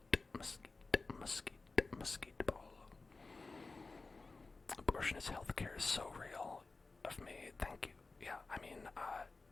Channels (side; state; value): right; quieter; 3.8 dB